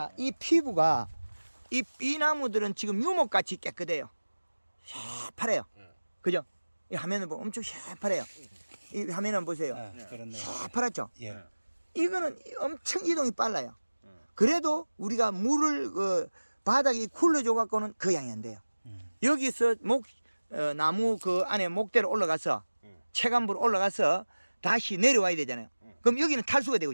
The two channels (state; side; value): inverted; both; correlation -1.00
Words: 이 피부가 이 나무들은 지금 유목같이 깨끗해요. 새파래요. 그죠? 이 화면을 보면 엄청 새파래요. 이 화면을 보세요. 그렇네. 새파랗죠? 예. 이거는 엄청 이동이 빨라요. 그래도 우리가 물을 바닥에 굴러줘 갖고는 그 양이 안 돼요. 여기서 나무 그 안에 목대로 올라가서 체감부로 올라가서 다시 내려와야 되잖아요. 그럼 여기는 탈수가 되고